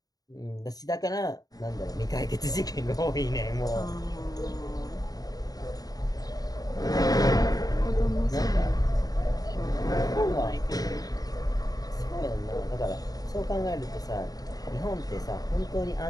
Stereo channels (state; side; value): late; right; 0.18 ms